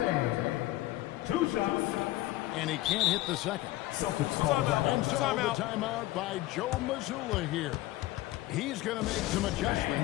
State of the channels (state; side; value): quieter; right; 16.9 dB